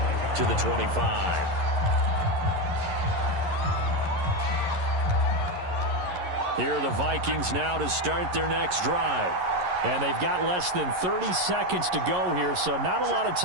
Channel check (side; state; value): left; late; 11 ms